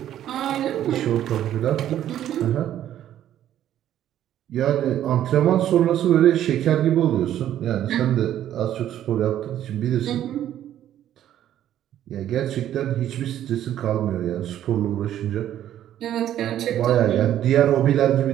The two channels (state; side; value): quieter; left; 11.5 dB